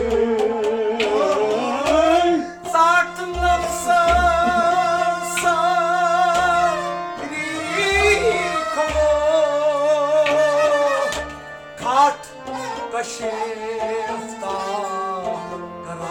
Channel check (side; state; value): both; identical; correlation 1.00